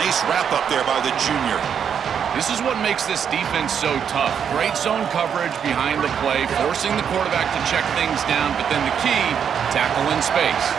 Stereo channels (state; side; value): quieter; left; 7.8 dB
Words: wrap up there by the junior. This is what makes this defense so tough. Great zone coverage behind the play, forcing the quarterback to check things down, but then the key, tackle in space.